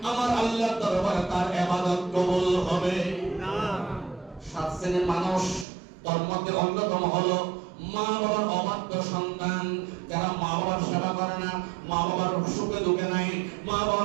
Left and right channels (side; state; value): left; drops out; at 5.7 s